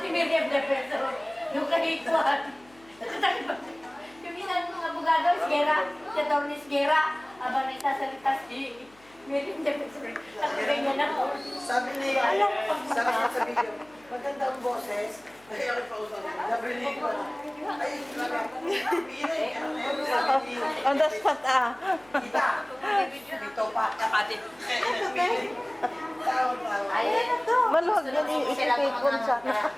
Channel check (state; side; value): noise; left; hum, 28 dB below the sound